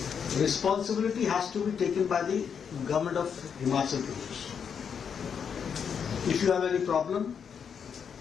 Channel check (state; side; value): quieter; right; 7.1 dB